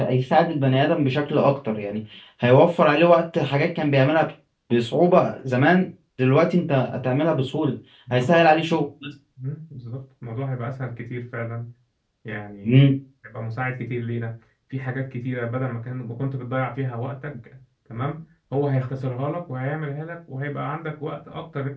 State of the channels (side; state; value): both; identical; correlation 1.00